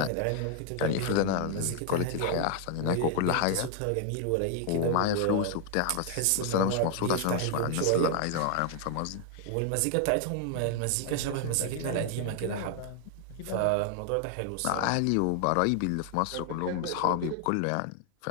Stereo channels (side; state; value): both; different; correlation 0.00